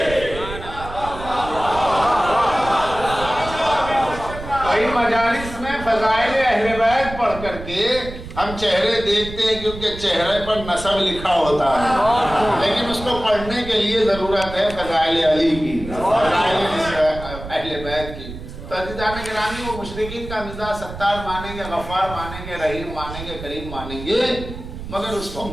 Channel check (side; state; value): right; noise; rumble, 11 dB below the sound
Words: ہم چہرے دیکھتے ہیں کیونکہ چہرے پر نسب لکھا ہوتا ہے، لیکن اس کو پڑھنے کے لیے ضرورت ہے فضائل علی کی، فضائل اہل بیت کی۔ تو عزیزان گرامی، وہ مشرکین کا مزاج ستار مانیں گے، غفار مانیں گے، رحیم مانیں گے، کریم مانیں گے، مگر اس کو